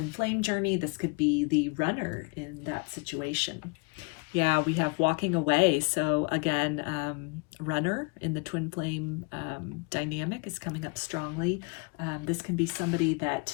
flame journey, this could be the runner in that situation. Yeah, we have walking away. So again, runner in the twin flame dynamic is coming up strongly. This can be somebody that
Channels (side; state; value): right; quieter; 32.5 dB